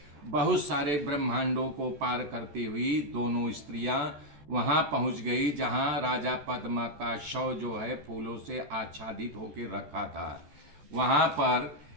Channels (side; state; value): left; late; 14 ms